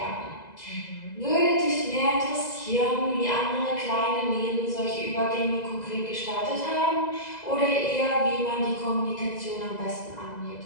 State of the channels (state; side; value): late; right; 2.0 ms